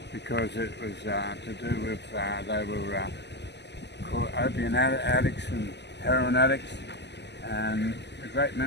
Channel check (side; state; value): right; late; 0.50 ms